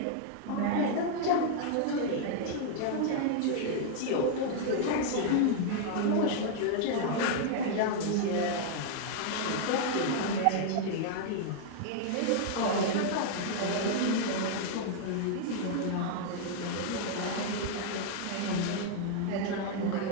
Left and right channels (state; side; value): different; both; correlation 0.00